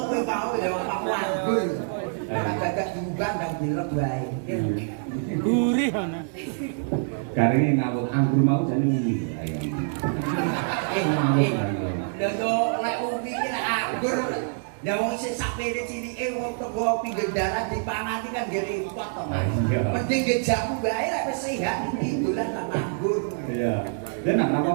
kowe mau ya Pak Wanggul. Agak diubah dan dilek wae. Gurih ana. Garinge ngawut anggur mau jane ngene. Ayo. Lha yo lek umi ki lek anggur. Ya wong sing sapene cilike wong teko pinggir dalan dipangati kan nggih repot to, Mas. Mending nggih jamu wae lek wis sehat iki dolan nang anggur. Iya. Dan nak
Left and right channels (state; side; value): silent; left; 61 dB below the other